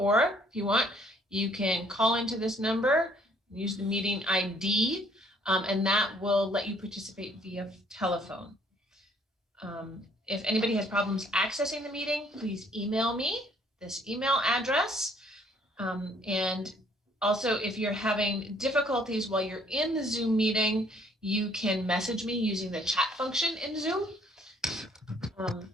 if you want, you can call into this number, use the meeting ID, and that will let you participate via telephone. If anybody has problems accessing the meeting, please email me this email address. And also, if you're having difficulties while you're in the Zoom meeting, you can message me using the chat function in Zoom.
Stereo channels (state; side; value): normal; both; correlation 0.62